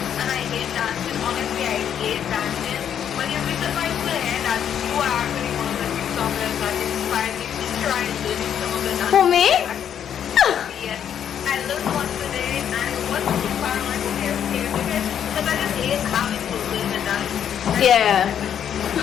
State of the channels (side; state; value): right; quieter; 9.1 dB